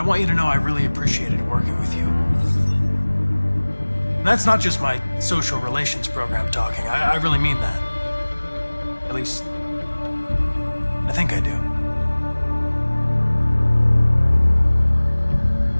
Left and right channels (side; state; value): both; inverted; correlation -1.00